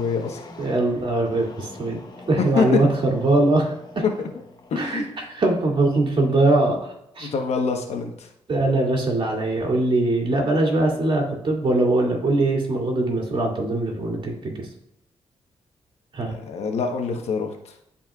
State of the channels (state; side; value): normal; both; correlation 0.70